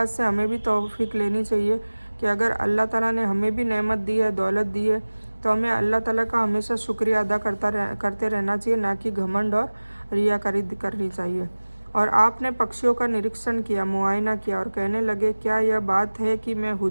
से हमें भी तौफीक लेनी चाहिए कि अगर अल्लाह ताला ने हमें भी नेमत दी है, दौलत दी है, तो हमें अल्लाह ताला का हमेशा शुक्रिया अदा करते रहना चाहिए, ना कि घमंड और रियाकारी करनी चाहिए। और आपने पक्षियों का निरीक्षण किया, मुआयना किया, और कहने लगे, क्या यह बात है कि मैं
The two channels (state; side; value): inverted; both; correlation -1.00